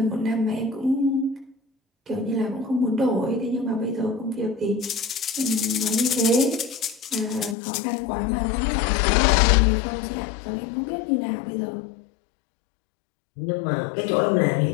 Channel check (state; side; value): drops out; right; at 7.6 s